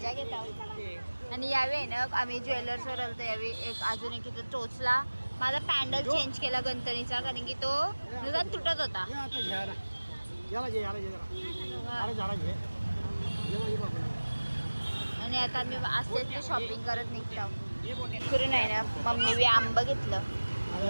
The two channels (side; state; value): both; inverted; correlation -1.00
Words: घेत आहोत. आणि यावेळी आहे ना आम्ही ज्वेलर्सवर आलो यावेळी अजून एक इथं टोचला. माझा पॅन्डल चेंज केला गणपतीचा कारण की तो नुकसान तुटत होता. आणि आता आम्ही असतेच ते शॉपिंग करत निघतो. फिरून आहे ना मम्मी आंबा घेतलं.